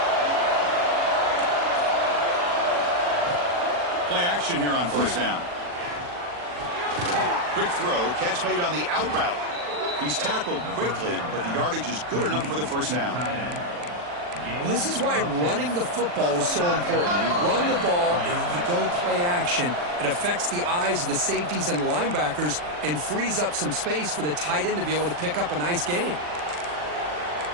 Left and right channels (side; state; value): left; late; 40 ms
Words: Play action here on first down. Quick throw, catch made on the out route. He's tackled quickly, but the yardage is good enough for the first down. Well, this is why running the football is so important. You run the ball, and then you go play action. It affects the eyes of the safeties and linebackers and frees up some space for the tight end to be able to pick up a nice gain.